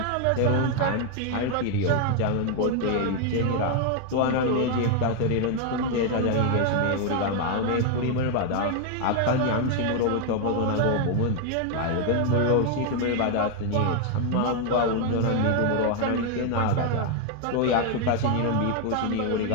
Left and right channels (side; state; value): both; different; correlation 0.01